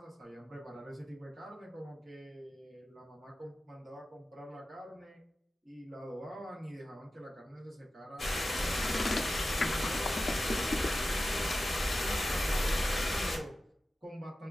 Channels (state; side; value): normal; both; correlation 0.93